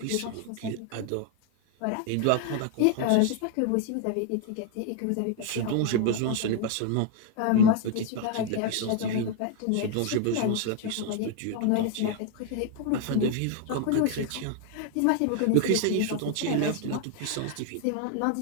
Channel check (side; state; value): both; different; correlation 0.00